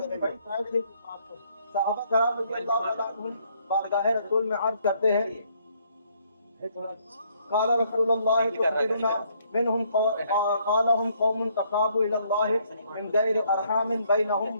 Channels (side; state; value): both; inverted; correlation -0.68